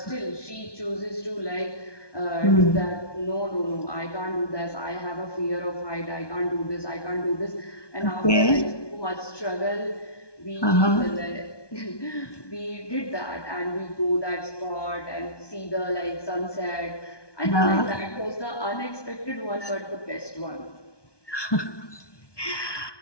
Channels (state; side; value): late; right; 1.2 ms